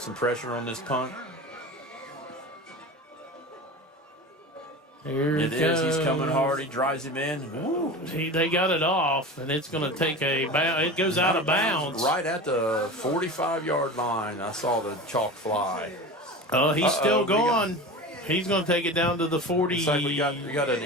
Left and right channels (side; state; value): both; normal; correlation 0.31